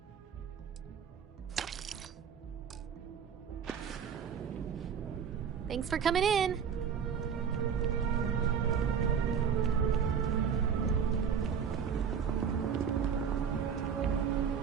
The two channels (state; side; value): quieter; left; 7.3 dB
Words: Thanks for coming in.